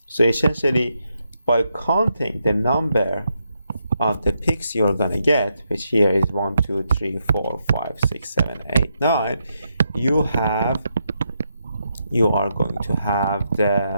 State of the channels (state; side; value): inverted; both; correlation -0.81